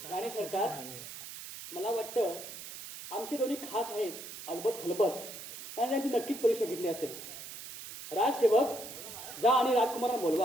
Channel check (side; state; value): right; noise; hiss, 11 dB below the sound